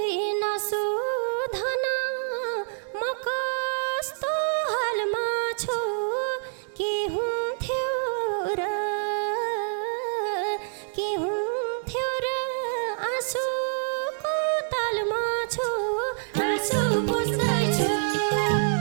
नसोधन म कस्तो हालमा छु के हुन्थ्यो र आँसुको तालमा छु आँसु पुस्दैछु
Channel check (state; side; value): silent; left; digital silence